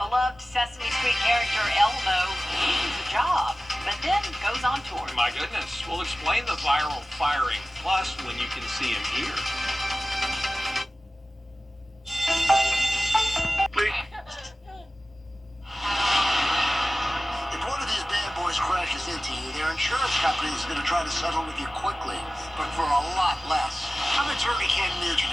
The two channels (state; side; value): normal; both; correlation 0.96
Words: beloved Sesame Street character Elmo loses a job, but then goes on tour. My goodness, we'll explain the viral firing, plus when you can see him here. If one of these bad boys crashes into you, their insurance company is going to try to settle with you quickly, but for a lot less. I'm attorney Ken Nugent,